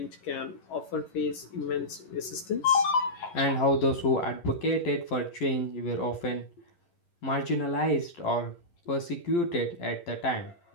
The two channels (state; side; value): late; right; 11 ms